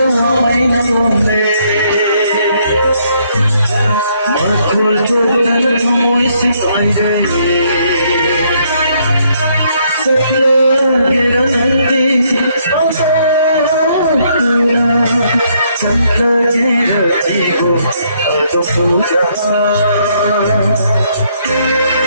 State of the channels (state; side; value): inverted; both; correlation -0.70